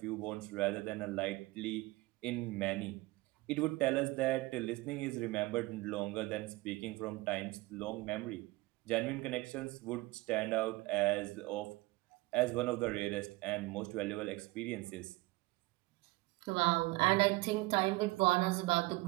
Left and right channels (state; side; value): quieter; left; 21.3 dB